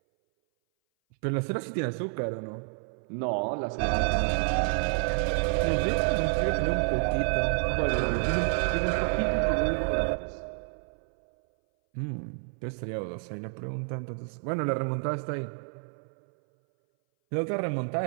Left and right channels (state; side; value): silent; left; 58 dB below the other